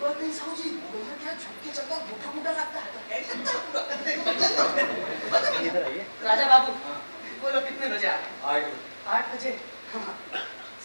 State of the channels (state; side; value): inverted; both; correlation -1.00